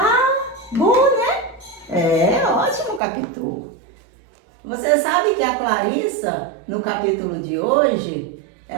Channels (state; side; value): drops out; left; at 3.0 s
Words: Bom, né? É ótimo, Capitu. Você sabe que a Clarissa, no capítulo de hoje,